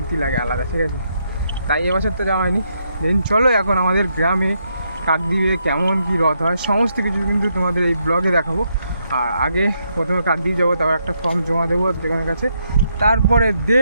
লাগে আলাদা, ঠিক আছে? তাই এবছর তো যাওয়া হয়নি। দেন চলো এখন আমাদের গ্রামে কাকদ্বীপে কেমন কী রথ হয় সমস্ত কিছু কিন্তু তোমাদের এই ব্লগে দেখাবো। আর আগে প্রথমে কাকদ্বীপ যাবো, তারপর একটা ফর্ম জমা দেবো যেখানের কাছে, তারপরে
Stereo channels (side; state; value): both; inverted; correlation -0.78